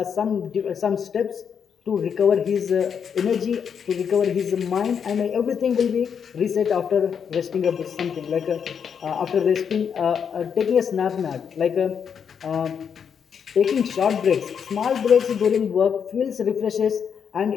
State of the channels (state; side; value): quieter; right; 7.2 dB